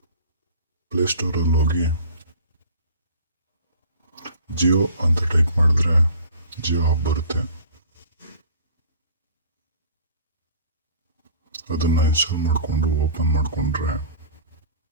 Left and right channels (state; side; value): inverted; both; correlation -0.45